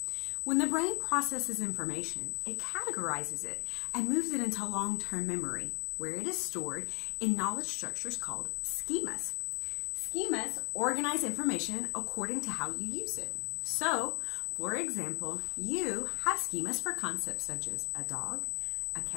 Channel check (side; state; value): right; quieter; 38.1 dB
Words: When the brain processes information, it categorizes it and moves it into long-term memory, where it is stored in knowledge structures called schemas. Schemas organize information according to how you use it. So, for example, you have schemas for concepts such as a dog, a